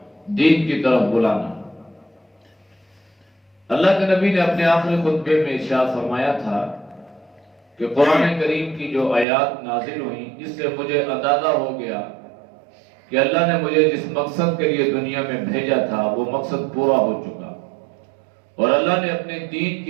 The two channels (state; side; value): drops out; left; at 9.2 s